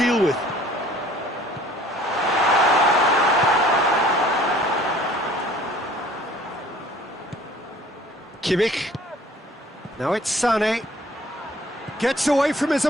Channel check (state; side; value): normal; both; correlation 0.53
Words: with. Kimmich. Now it's Sané. Gets away from his